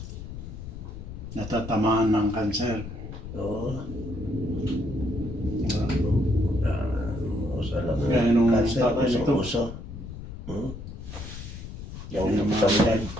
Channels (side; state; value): left; noise; rumble, 10 dB below the sound